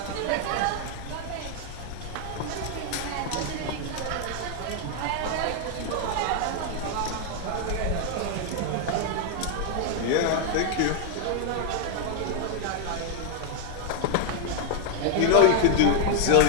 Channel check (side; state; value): both; different; correlation 0.00